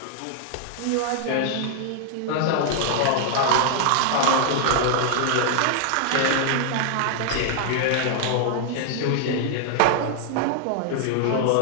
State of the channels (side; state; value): both; different; correlation -0.01